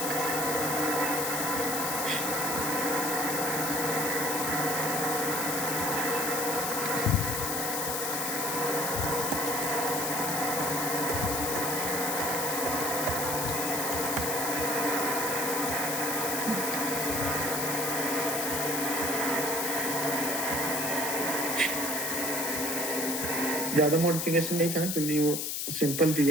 ज्यादा मॉडिफिकेशन नहीं था, क्योंकि वो सिंपल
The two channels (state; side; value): noise; left; hiss, 1 dB below the sound